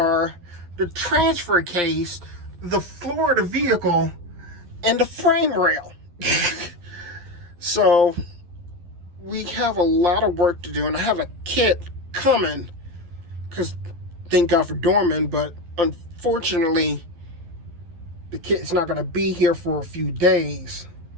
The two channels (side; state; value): left; late; 11 ms